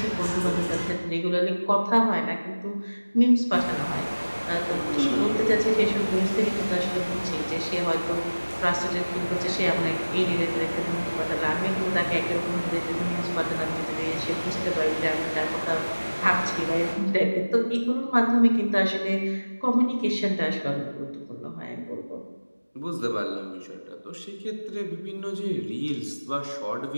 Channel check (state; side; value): inverted; both; correlation -1.00